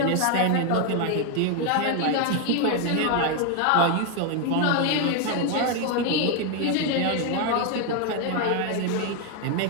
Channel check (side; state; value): both; different; correlation 0.01